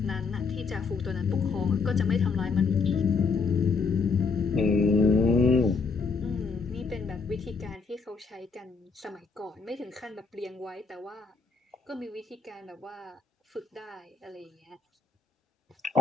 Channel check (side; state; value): right; quieter; 4.8 dB